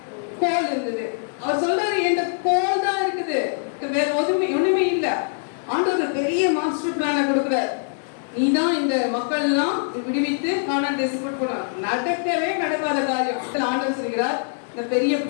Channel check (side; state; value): right; silent; digital silence